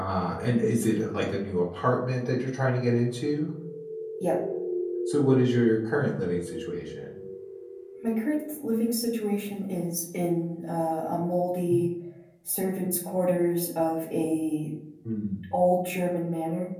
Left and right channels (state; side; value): identical; both; correlation 1.00